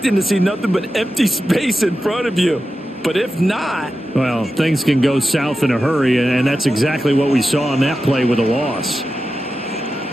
to see nothing but empty space in front of you. But if not... Well, things can go south in a hurry, and that's exactly what we saw on that play with a loss.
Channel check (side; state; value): both; normal; correlation 0.91